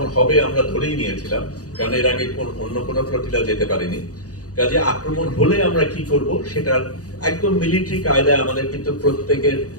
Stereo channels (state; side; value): late; right; 0.67 ms